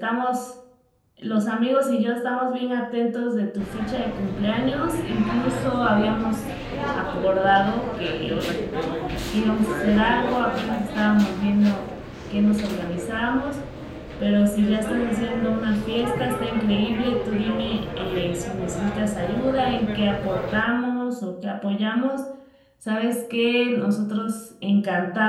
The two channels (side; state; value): both; identical; correlation 1.00